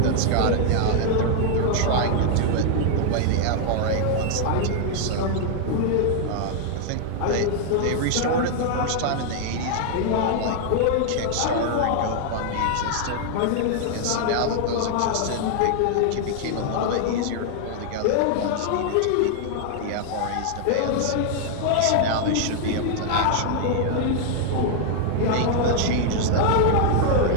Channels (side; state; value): both; different; correlation 0.00